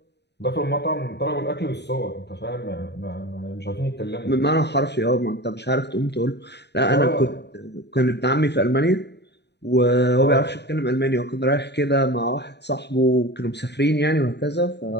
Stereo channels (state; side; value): late; right; 0.50 ms